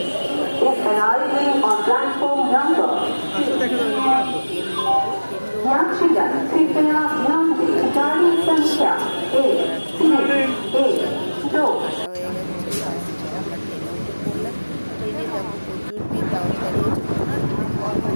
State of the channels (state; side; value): inverted; both; correlation -1.00